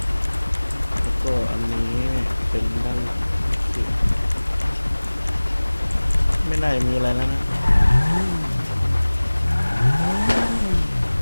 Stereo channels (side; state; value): both; inverted; correlation -1.00